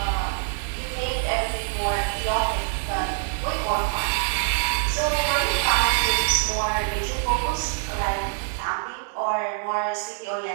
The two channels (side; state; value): left; silent; digital silence